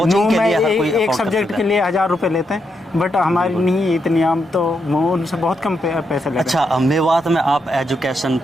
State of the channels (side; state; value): both; normal; correlation 0.81